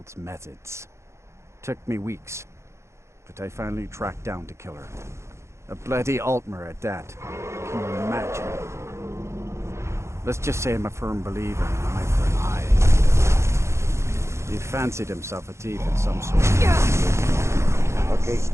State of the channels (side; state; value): left; late; 0.13 ms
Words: methods. Took me weeks, but I finally tracked down to kill her. A bloody Altmer at that. Can you imagine? Let's just say I'm a firm believer in an eye for an eye. He fancied himself a thief in some sort. Okay,